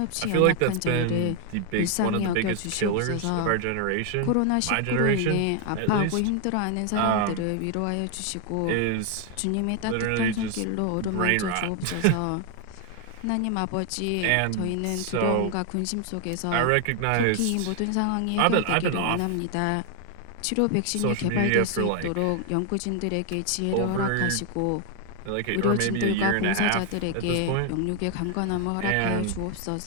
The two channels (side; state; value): both; different; correlation 0.00